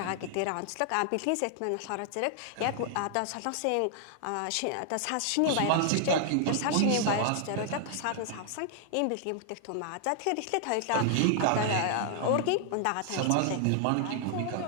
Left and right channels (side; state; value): both; different; correlation 0.00